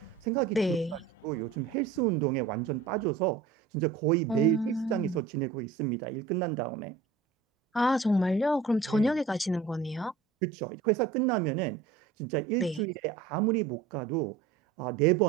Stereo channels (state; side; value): quieter; left; 5.4 dB